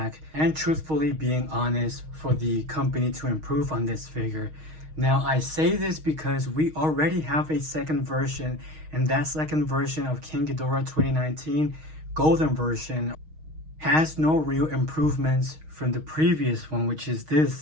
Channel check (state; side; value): late; left; 6.4 ms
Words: and truthfully being honest for the company to improve on this figure. Now, I say this because we already have a second version, and that second version of King Ghidorah 2019 Golden version has no real improvements from the previous one, which is this,